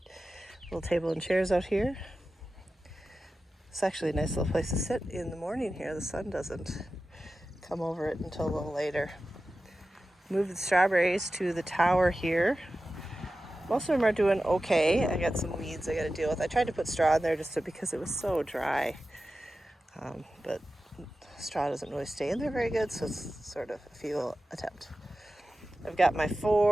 little table and chairs out here. It's actually a nice little place to sit in the morning here. The sun doesn't come over it until a little later. Move the strawberries to the tower here. Most of them are doing okay. I got some weeds I got to deal with. I tried to put straw in there because it was so dry. But straw doesn't really stay in there very good, so it's sort of a futile attempt. I've got my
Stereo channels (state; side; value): normal; both; correlation 0.94